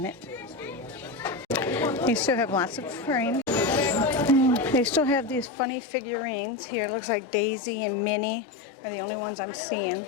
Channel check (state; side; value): drops out; right; at 5.5 s